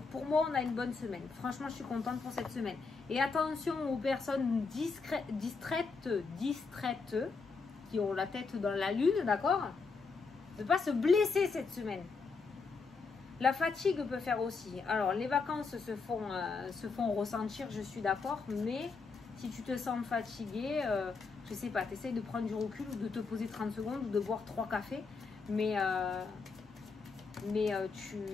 pour moi, on a une bonne semaine. Franchement, je suis contente pour cette semaine. Et attention aux personnes distraites, qui ont la tête dans la lune, d'accord? Ne pas se blesser cette semaine. La fatigue peut faire aussi. Alors, les vacances se font ressentir, je suis d'accord. Mais si tu te sens fatigué, je sais pas, tu essayes de prendre du recul ou de te poser 30 secondes ou de boire 3 cafés. Mais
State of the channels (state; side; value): quieter; right; 4.6 dB